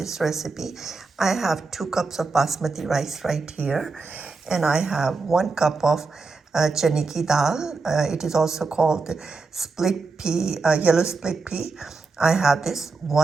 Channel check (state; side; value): quieter; left; 4.1 dB